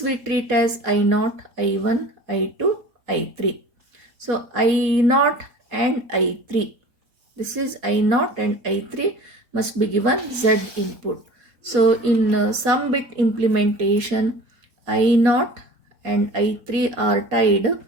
treat as I0, I1, I2, I3. So I0 and I3. This is I0 and I3 must be given Z input. So in sum bit implementation, I0 and I3 are tied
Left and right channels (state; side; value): late; left; 3.9 ms